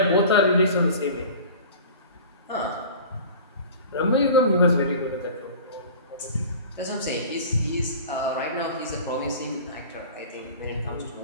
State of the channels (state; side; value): inverted; both; correlation -0.40